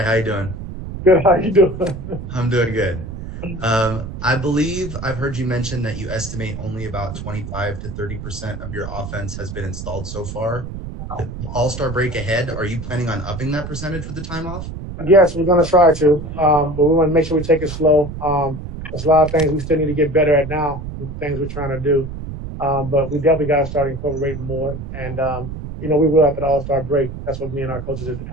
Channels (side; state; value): right; noise; rumble, 8 dB below the sound